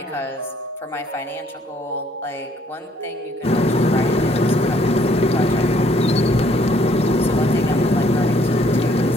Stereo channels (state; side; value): normal; both; correlation 0.64